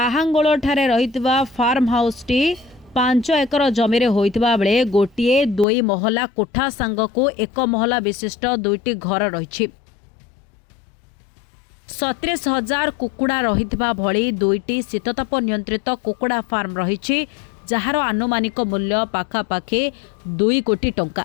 ठारे रहितबा फार्म हाउस टी 5 एकर जमी रे होइतबा बेले गोटिए 2 महला कोठा सांगको 1 महला विशिष्ट 2टी घर रहिछि। 37,000 कुकुड़ा रहितबा भली 2टी शीतताप नियंत्रित कुकुड़ा फार्म रहिछि, जहार आनुमानिक मूल्य पाखापाखि 2 कोटी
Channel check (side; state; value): right; drops out; at 5.7 s